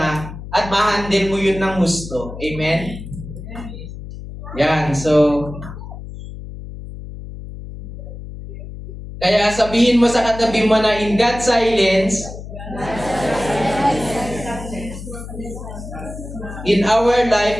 at ma-handle mo yun ng gusto. Amen? Yan, so Kaya sabihin mo sa katabi mo na in God's silence, in our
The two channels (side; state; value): left; noise; hum, 11 dB below the sound